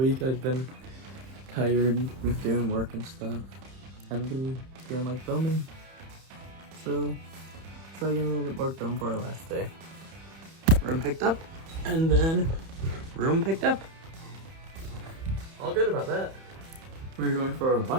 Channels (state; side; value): late; left; 31 ms